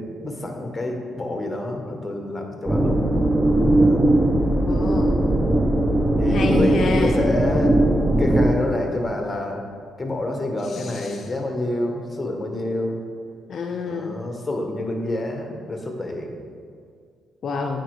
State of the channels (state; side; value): normal; both; correlation 0.88